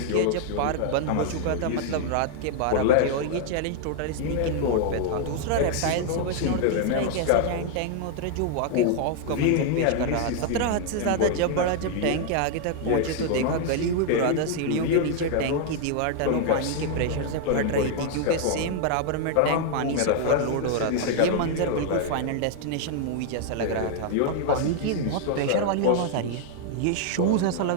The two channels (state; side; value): different; both; correlation 0.00